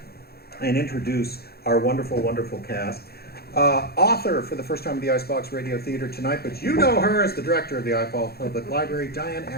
and introduce our wonderful, wonderful cast. Author for the first time at the Icebox Radio Theater tonight, but you know her as the director of the Icebox Public Library, Diane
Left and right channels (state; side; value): late; right; 0.46 ms